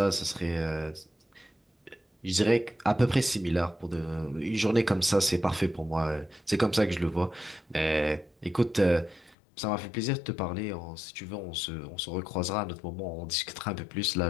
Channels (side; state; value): right; drops out; at 9.3 s